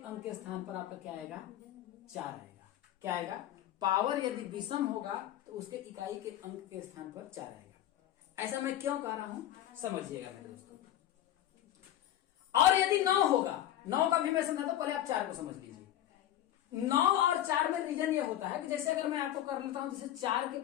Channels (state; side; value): quieter; right; 12.3 dB